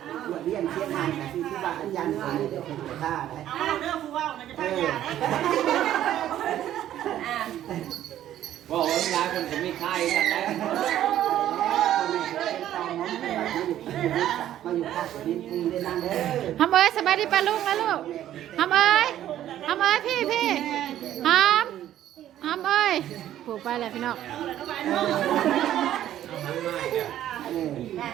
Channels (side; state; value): left; quieter; 12.0 dB